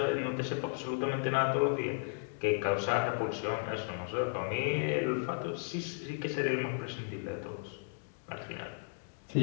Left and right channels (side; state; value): right; silent; digital silence